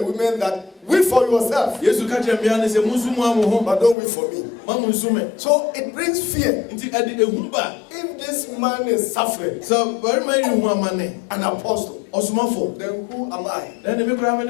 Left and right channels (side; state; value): right; drops out; at 4.0 s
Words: women that weep for yourself, but don't weep for me. So it brings fear. If this man is suffering, an apostle, then who am I?